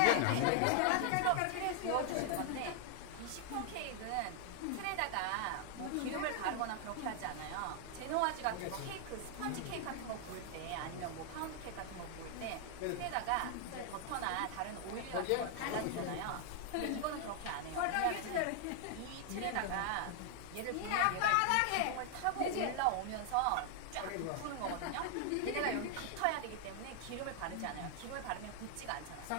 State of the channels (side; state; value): both; different; correlation 0.00